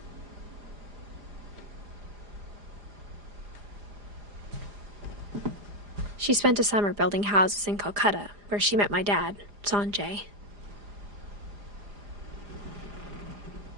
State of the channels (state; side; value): late; left; 4.9 ms